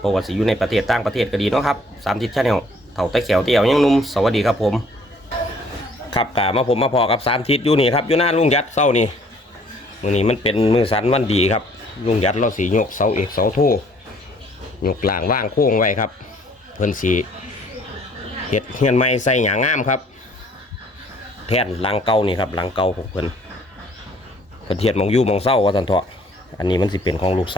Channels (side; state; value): both; normal; correlation 0.59